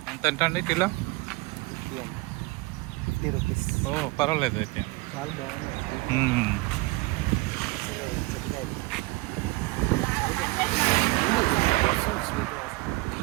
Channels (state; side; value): quieter; left; 22.6 dB